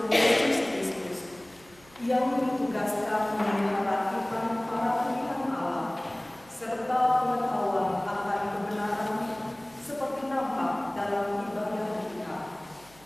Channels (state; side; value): noise; right; hum, 26 dB below the sound